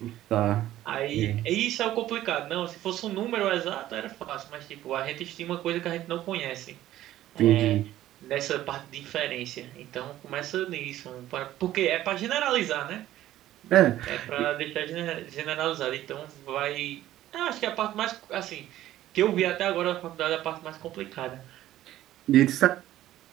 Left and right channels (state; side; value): quieter; left; 13.8 dB